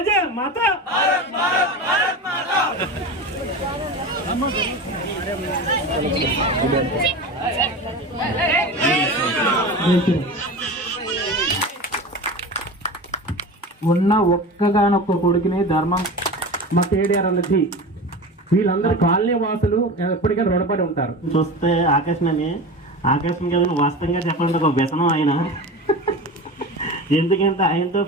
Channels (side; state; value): both; normal; correlation 0.29